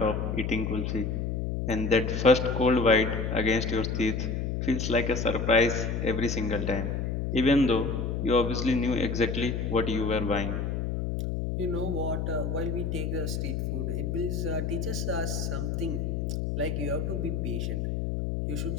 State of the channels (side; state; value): left; noise; hum, 1 dB below the sound